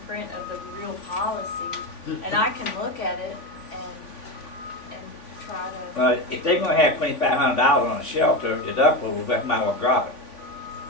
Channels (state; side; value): late; right; 3.5 ms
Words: print of the real policy. And I can look at it and try to. Well, if they're gonna have $2,500 on a shelter deductible, we might well drop it.